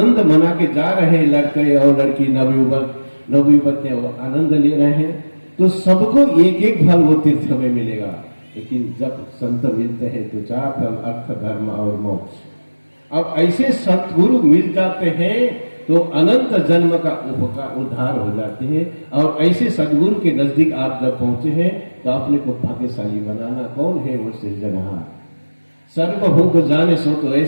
मना के जा रहे हैं लड़के और लड़की, नवयुवक ने वो आनंद ले रहे हैं, तो सबको एक एक फल वो तीर्थ में मिलेगा। लेकिन जब संत मिलते हैं तो 4 फल, अर्थ, धर्म और मोक्ष। अब ऐसे सतगुरु मिल जाते हैं तो अनंत जन्म का उद्धार हो जाते हैं। और ऐसे सदगुरु के नजदीक आप जब पहुंचे हैं तो अपने को भाग्यशाली बनाना। कौन है वो? सृजनहार। सर्व हो को जाने सो तो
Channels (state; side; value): inverted; both; correlation -1.00